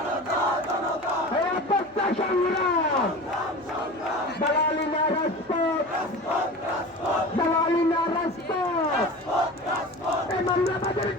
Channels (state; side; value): noise; left; hum, 30 dB below the sound